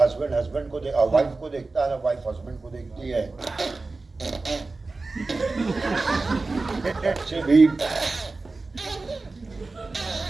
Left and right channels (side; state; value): left; quieter; 3.6 dB